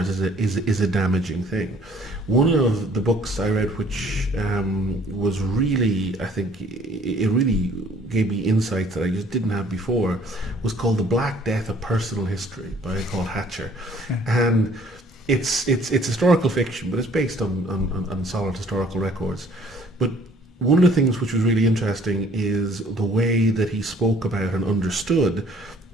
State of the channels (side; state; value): both; normal; correlation 0.57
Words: is a damaging thing. One of the books I read which was really, I think, it really gave me insights that I just didn't have before, was called The Black Death of Personal History by Paul Hatcher. Okay. And it's historical fiction, but it's based on solid historical records. But one of the things which was really interesting is the way that he spoke about and understood